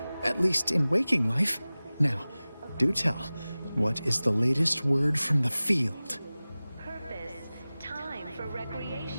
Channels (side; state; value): both; inverted; correlation -0.98